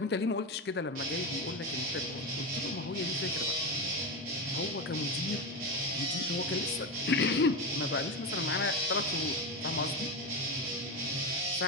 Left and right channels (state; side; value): normal; both; correlation 0.17